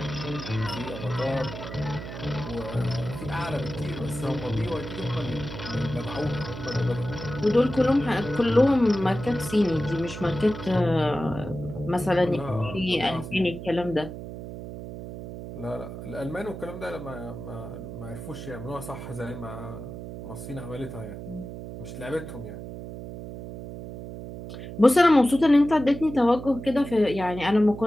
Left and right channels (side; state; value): right; noise; hum, 10 dB below the sound